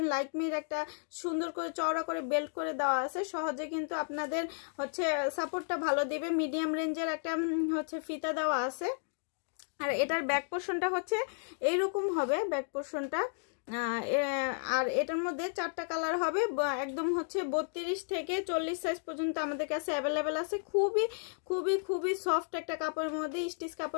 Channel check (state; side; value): silent; right; digital silence